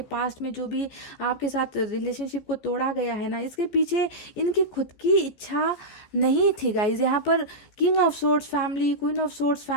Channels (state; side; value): late; right; 15 ms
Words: पास्ट में जो भी आपके साथ रिलेशनशिप को तोड़ा गया है ना, इसके पीछे इनकी खुद की इच्छा नहीं थी गाइज। यहाँ पर king of swords family, queen of swords